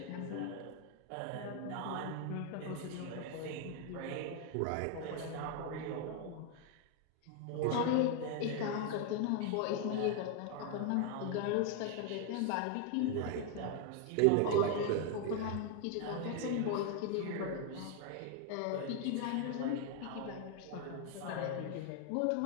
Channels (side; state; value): both; different; correlation 0.01